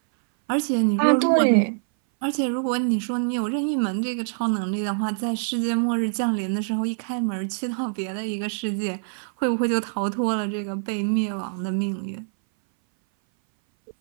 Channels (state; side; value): silent; left; 59 dB below the other